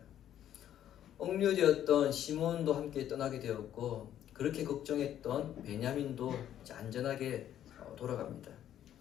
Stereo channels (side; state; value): right; quieter; 11.0 dB